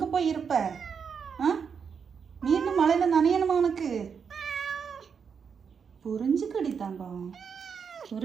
போய் இருப்ப? மீண்டும் மழையில நனையணுமா உனக்கு? புரிஞ்சுக்கடி தங்கம்,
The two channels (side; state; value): left; quieter; 6.5 dB